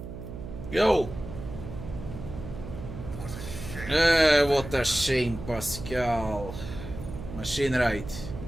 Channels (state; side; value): noise; right; hum, 10 dB below the sound